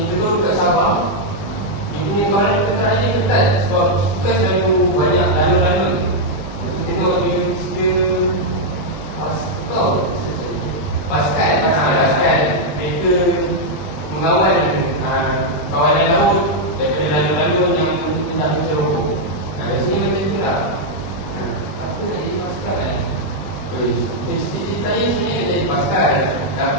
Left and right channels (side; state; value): right; late; 20 ms